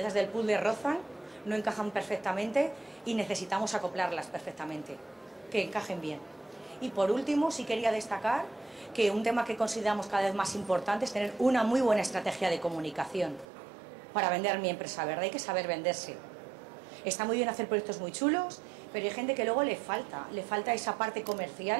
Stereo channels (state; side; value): drops out; left; at 13.5 s